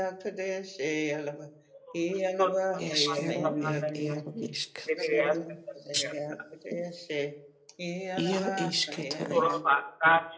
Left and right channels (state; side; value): identical; both; correlation 1.00